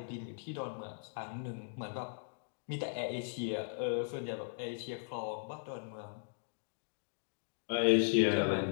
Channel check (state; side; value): silent; right; digital silence